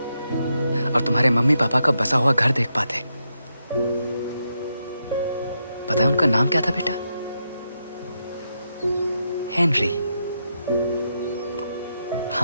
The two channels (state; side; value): inverted; both; correlation -0.83